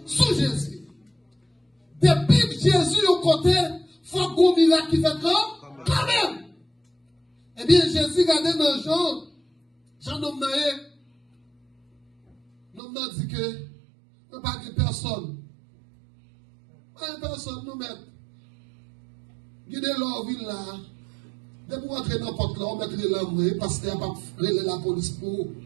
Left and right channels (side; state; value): left; drops out; at 12.8 s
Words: sous Jésus. Depuis que Jésus au côté, faut qu'on miracle qui fait quand même. Eh bien, Jésus regardait dans Jean nomme n'a dit que, nous pas de personne. Pas de personne, nous mettre. Guidez leur ville là. Dès pour entrer dans n'importe là, on mettrait l'homme parce qu'il n'y a pas la police pour.